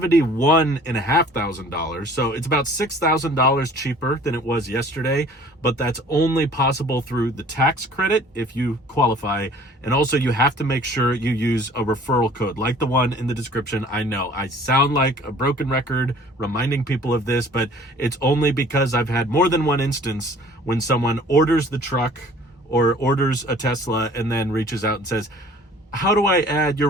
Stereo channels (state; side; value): normal; both; correlation 0.51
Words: So it's about $6,000 cheaper than it was yesterday, but that's only possible through the tax credit if you qualify. And also you have to make sure you use a referral code like the one in the description. I know I sound like a broken record reminding people of this, but it's only because I've had more than one instance when someone orders the truck or orders a Tesla and then reaches out and says, how do I add your